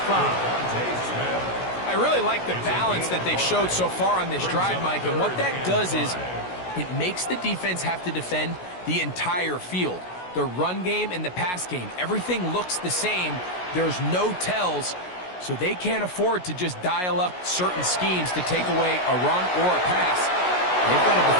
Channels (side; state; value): right; late; 16 ms